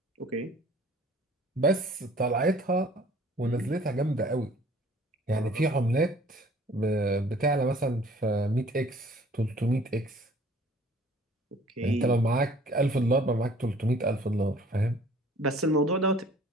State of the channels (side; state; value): both; normal; correlation 0.53